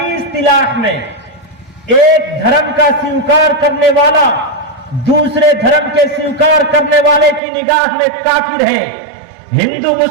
इस्तिलाह में एक धर्म का स्वीकार करने वाला दूसरे धर्म के स्वीकार करने वाले की निगाह में काफिर है। हिंदू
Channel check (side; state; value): left; drops out; at 7.4 s